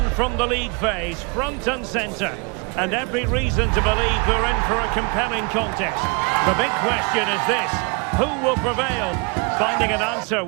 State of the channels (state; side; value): quieter; left; 31.6 dB